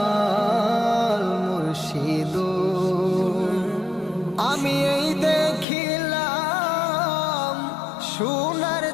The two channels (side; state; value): right; drops out; at 5.7 s